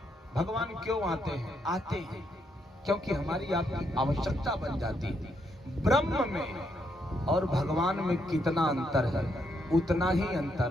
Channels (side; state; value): both; normal; correlation 0.77